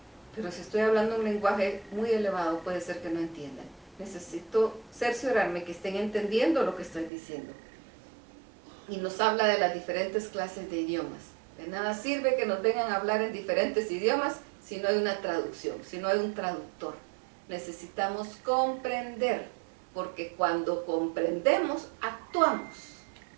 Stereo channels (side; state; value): left; drops out; at 7.1 s